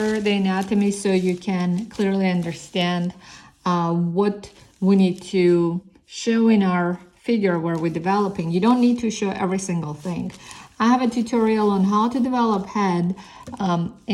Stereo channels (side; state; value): both; identical; correlation 1.00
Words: the anatomy so you can clearly understand what we need to show in our figure where we're developing. You don't need to show every single thing. I have a tutorial on how to develop head